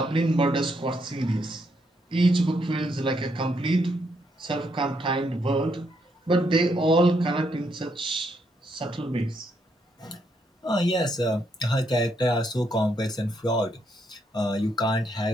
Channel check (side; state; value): both; normal; correlation 0.76